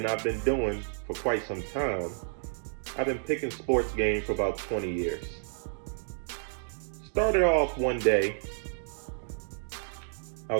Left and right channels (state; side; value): silent; left; digital silence